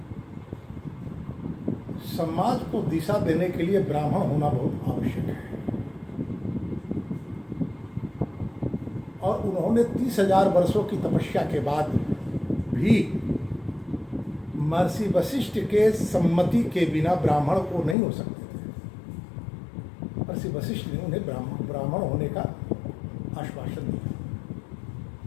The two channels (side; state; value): right; drops out; at 17.9 s